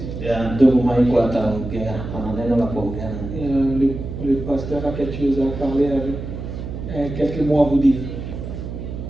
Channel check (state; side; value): noise; right; hum, 8 dB below the sound